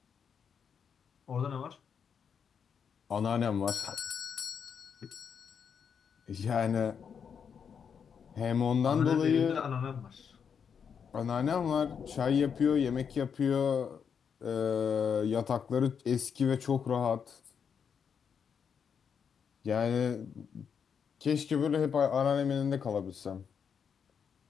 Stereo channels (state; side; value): quieter; right; 7.0 dB